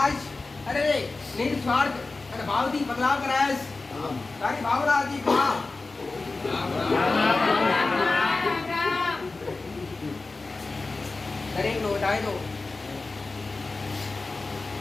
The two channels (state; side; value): quieter; right; 3.6 dB